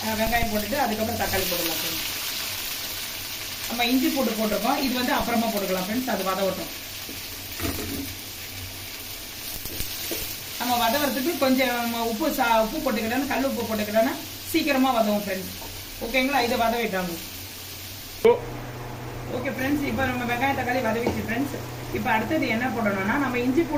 வெங்காயம் போட்டுட்டு அதுக்கப்புறம் தக்காளி போட்டுக்கலாம் ஃப்ரெண்ட்ஸ். நம்ம இஞ்சி போட்டிருக்கோம். இது வந்து அப்புறமா போட்டுக்கலாம் ஃப்ரெண்ட்ஸ். அது வதவட்டும். நம்ம வதவறதுக்கு கொஞ்சம் உப்பு போட்டுக்கிட்டோன்னா, கல் உப்பு போட்டுக்கிட்டோன்னா சீக்கிரமா வதவும் ஃப்ரெண்ட்ஸ். ஓகேங்களா? இதை வதவிட்டாங்க. ஓகே ஃப்ரெண்ட்ஸ், இப்போ நம்ம வெங்காயம் தக்காளி வதவிச்சு ஃப்ரெண்ட்ஸ். இப்போ அடுத்தது என்ன போடணும்னா, நம்ம இஞ்சி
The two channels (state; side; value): identical; both; correlation 1.00